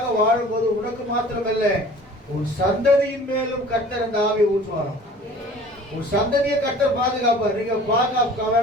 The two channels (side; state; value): both; normal; correlation 0.46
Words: வாழும் போது உனக்கு மாத்திரமல்ல உன் சந்ததியின் மேலும் கர்த்தர் அந்த ஆவியை ஊற்றுவாராம். உன் சந்ததியை கர்த்தர் பாதுகாப்பார். நீங்க பாதுகாக்க